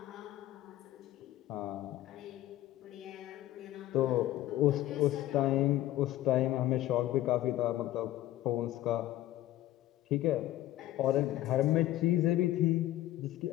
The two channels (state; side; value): quieter; right; 14.5 dB